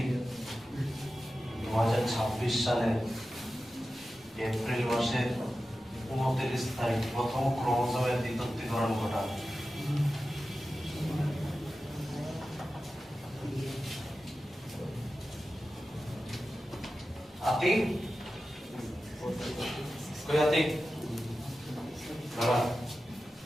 সালের এপ্রিল মাসের 29 তারিখ প্রথম ক্রোমোজোমের দ্বিতীয়করণ ঘটায়। আতিক কই আতিক বাবা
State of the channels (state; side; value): normal; both; correlation 0.93